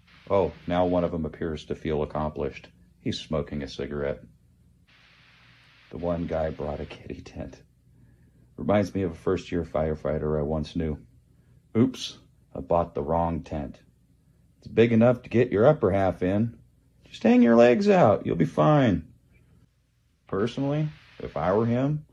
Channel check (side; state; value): both; identical; correlation 1.00